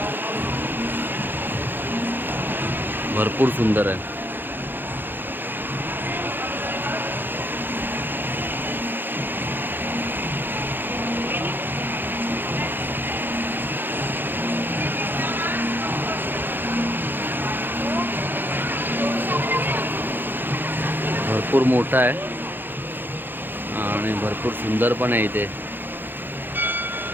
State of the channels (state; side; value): late; left; 0.096 ms